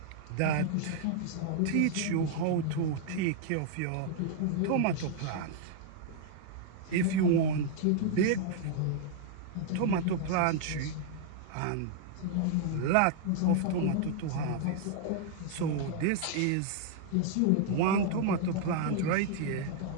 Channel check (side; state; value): both; different; correlation -0.01